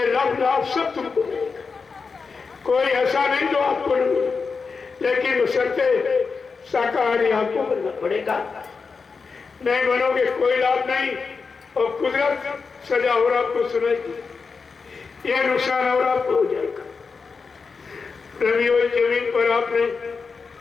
लाभ सब तुमको मिलेगा। कोई ऐसा नहीं जो आपको नहीं मिले, लेकिन बशर्ते शाकाहारी आपको बनना पड़ेगा। नहीं बनोगे कोई लाभ नहीं, और कुदरत सजा और आपको सुनाएगी, ये नुकसान और आपको हो जाएगा। रवियों जमीन पर आपने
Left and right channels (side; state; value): right; quieter; 4.9 dB